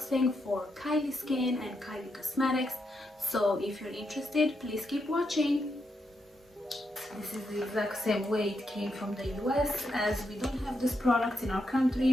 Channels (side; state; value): both; normal; correlation 0.82